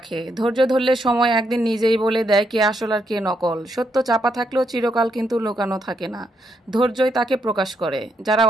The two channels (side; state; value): both; normal; correlation 0.77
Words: ধৈর্য ধরলে সময় একদিন নিজেই বলে দেয় কে আসল আর কে নকল। সত্য চাপা থাকলেও চিরকাল কিন্তু লুকানো থাকে না, ধৈর্যই তাকে প্রকাশ করে। যারা